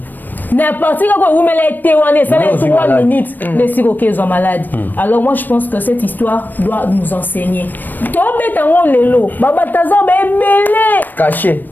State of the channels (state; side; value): late; right; 0.090 ms